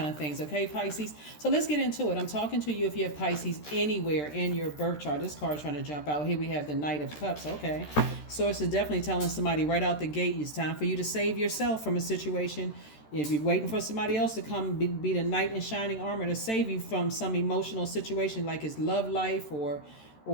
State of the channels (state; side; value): late; right; 13 ms